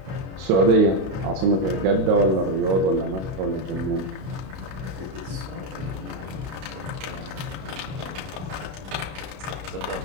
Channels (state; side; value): late; left; 32 ms